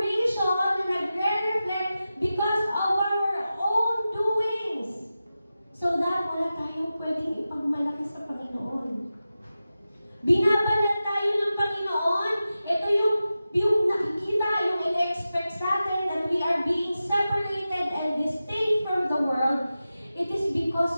na nagre-reflect because of our own doings. So that wala tayong pwedeng ipagmalaki sa Panginoon. Binabanat tayo ng Panginoon. Ito yung nakikita, yung in-expect sa atin that we are being separated and distinct from the world. It is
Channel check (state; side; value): inverted; both; correlation -0.93